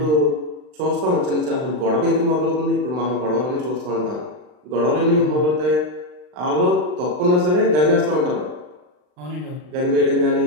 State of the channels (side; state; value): left; late; 39 ms